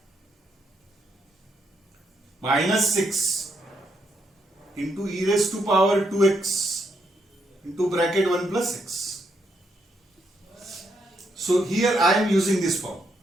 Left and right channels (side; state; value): both; normal; correlation 0.77